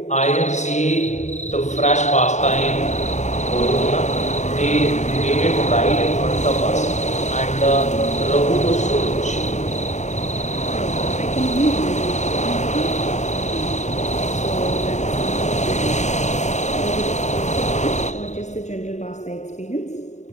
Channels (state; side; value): late; right; 0.34 ms